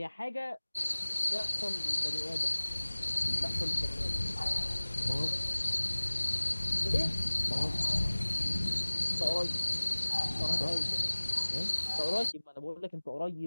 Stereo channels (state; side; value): inverted; both; correlation -1.00